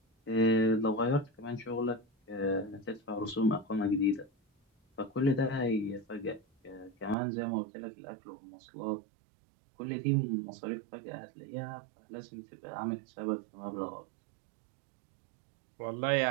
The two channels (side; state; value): left; drops out; at 7.2 s